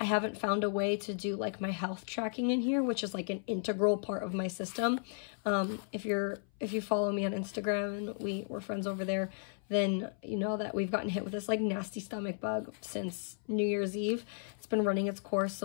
haven't found a way to do like my health tracking in here, which is like an integral part of my system. If you follow me on Instagram and we're friends over there, then you know that we've gotten hit with this like nasty stomach bug since New Year's Eve. It's been running its course.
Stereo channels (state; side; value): silent; right; 55 dB below the other